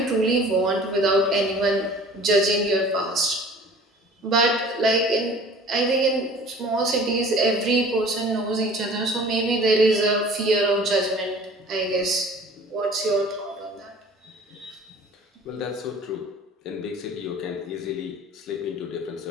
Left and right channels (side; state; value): both; normal; correlation 0.46